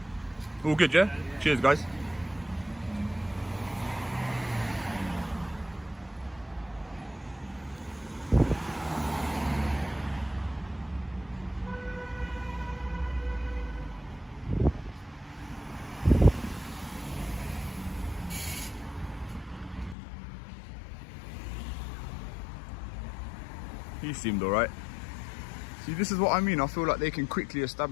All good, yeah? Cheers, guys. He seemed alright. See, this is what I mean. I feel like they can quickly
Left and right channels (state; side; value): drops out; right; at 20.0 s